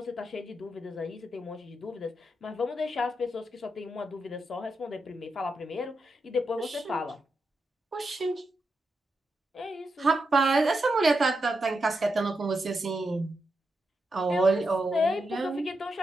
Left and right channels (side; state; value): both; normal; correlation 0.86